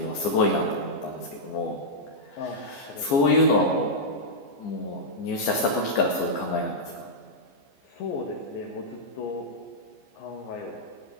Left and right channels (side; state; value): right; late; 14 ms